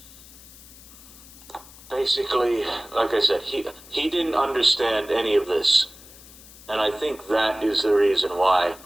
basically, like I said, he didn't understand any of this, and I think that is the reason why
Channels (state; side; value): noise; left; hiss, 20 dB below the sound